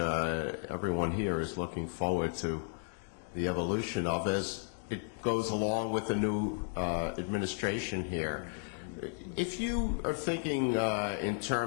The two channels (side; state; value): right; silent; 55 dB below the other